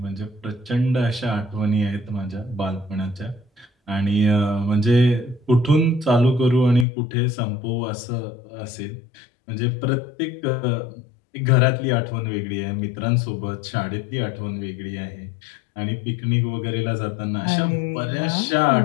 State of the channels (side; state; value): right; drops out; at 6.9 s